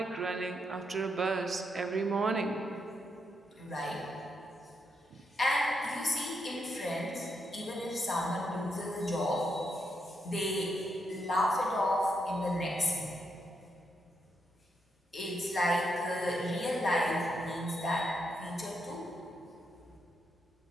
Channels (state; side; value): normal; both; correlation 0.81